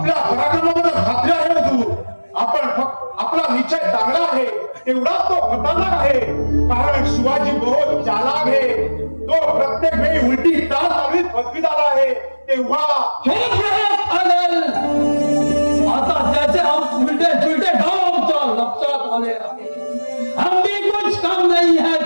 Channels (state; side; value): inverted; both; correlation -1.00